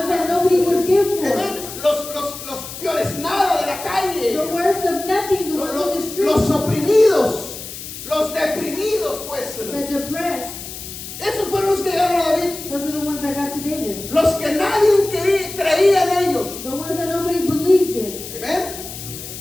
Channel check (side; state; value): left; noise; hiss, 11 dB below the sound